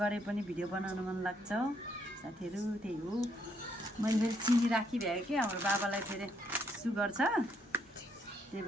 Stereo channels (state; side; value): normal; both; correlation 0.72